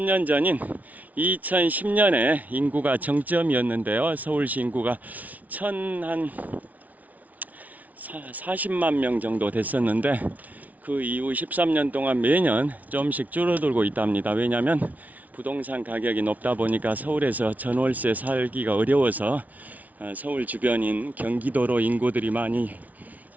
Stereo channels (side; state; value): left; late; 0.074 ms